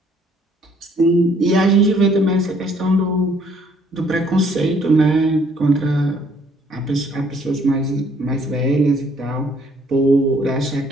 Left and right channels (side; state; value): both; normal; correlation 0.63